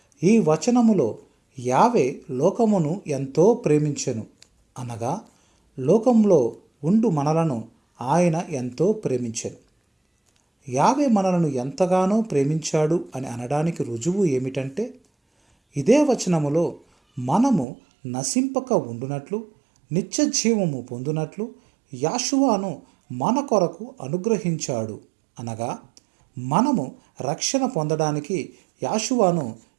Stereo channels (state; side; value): drops out; left; at 17.7 s